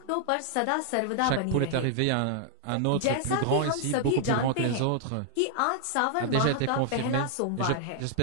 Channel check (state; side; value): different; both; correlation -0.01